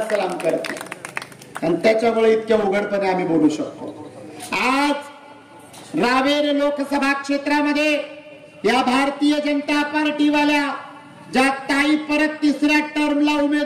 सलाम करते, आणि त्याच्यामुळे इतक्या उघडपणे आम्ही बोलू शकतो. आज रावेर लोकसभा क्षेत्रामध्ये या भारतीय जनता पार्टीवाल्या ज्या ताई परत तिसऱ्या टर्मला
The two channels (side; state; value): both; identical; correlation 1.00